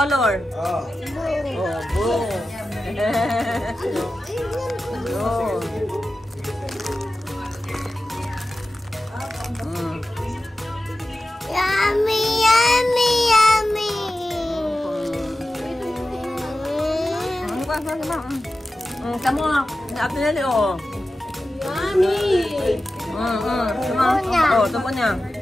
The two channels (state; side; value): normal; both; correlation 0.94